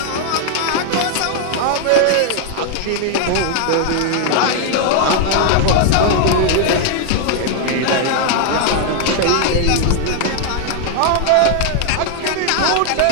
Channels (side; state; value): both; different; correlation 0.00